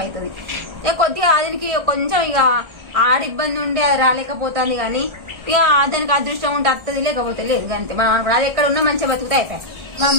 అవుతుంది. ఇక కొద్దిగా దానికి కొంచెం ఇక ఆడ ఇబ్బంది ఉండి అది రాలేకపోతుంది కానీ ఇక దానికి అదృష్టం ఉంటే వస్తుంది, లేకపోతే లేదు అంతే. మనం అది ఎక్కడ ఉన్నా మంచిగా బతుకుతా అయిపోయాయి.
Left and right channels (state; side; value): late; left; 1.4 ms